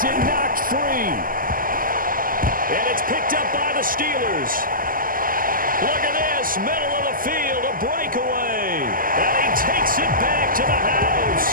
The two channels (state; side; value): late; left; 0.41 ms